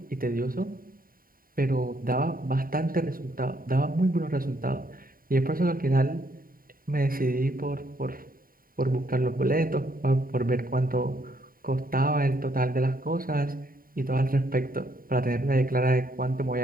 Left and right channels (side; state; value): left; late; 0.41 ms